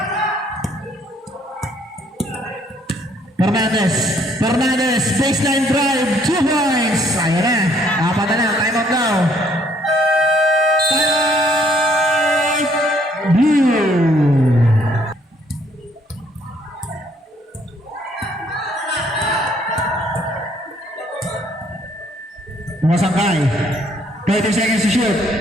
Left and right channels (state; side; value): normal; both; correlation 0.66